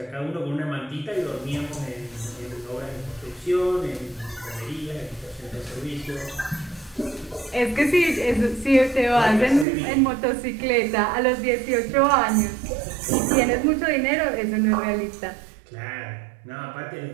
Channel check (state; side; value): drops out; left; at 9.7 s